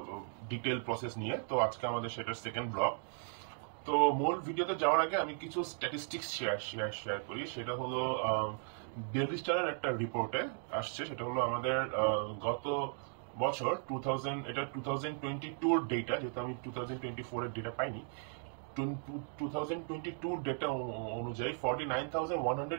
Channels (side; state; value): left; silent; 53 dB below the other